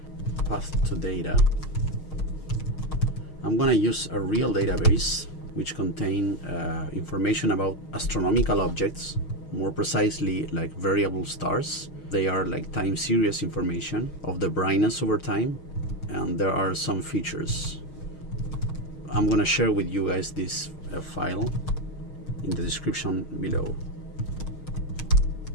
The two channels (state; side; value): late; right; 6.4 ms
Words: Path to data. I'm gonna use a real database which contain information about astronomical objects, more precisely like variable stars. They are like time series information of the brightness over time, and there are some features. I'm gonna share with you guys this file in the description below.